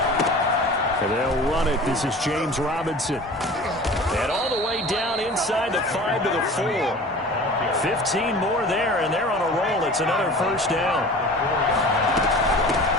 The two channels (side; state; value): both; normal; correlation 0.41